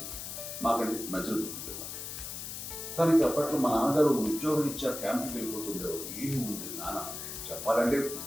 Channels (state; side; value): noise; left; hiss, 7 dB below the sound